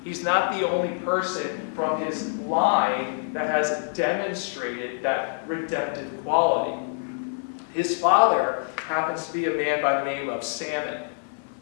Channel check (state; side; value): silent; right; 58 dB below the other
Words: He's not the only person from his line that has demonstrated that redemptive quality. His father happens to be a man by the name of Salmon.